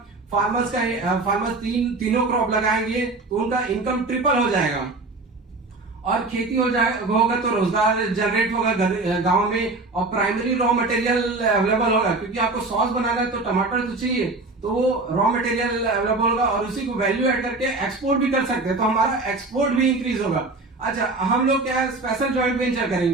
फार्मर्स तीनों क्रॉप लगाएंगे तो उनका इनकम ट्रिपल हो जाएगा, और खेती होगा तो रोजगार जनरेट होगा गांव में, और प्राइमरी रॉ मटेरियल अवेलेबल होगा, क्योंकि आपको सॉस बनाना है तो टमाटर तो चाहिए, तो वो रॉ मटेरियल अवेलेबल होगा और उसी को वैल्यू ऐड करके एक्सपोर्ट भी कर सकते हैं, तो हमारा एक्सपोर्ट भी इंक्रीज होगा। अच्छा हम लोग क्या स्पेशल जॉइंट वेंचर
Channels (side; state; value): left; quieter; 3.3 dB